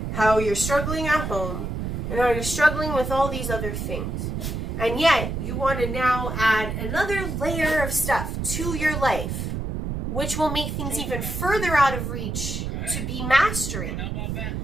how you're struggling at home, and how you're struggling with all these other things. And yet, you want to now add another layer of stuff to your life, which will make things even further out of reach to be mastering.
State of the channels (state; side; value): noise; right; rumble, 3 dB below the sound